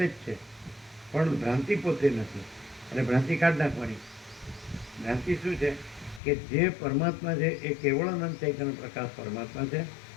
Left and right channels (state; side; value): drops out; right; at 6.2 s